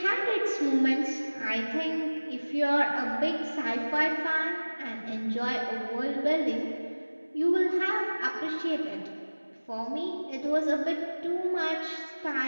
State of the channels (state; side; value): inverted; both; correlation -1.00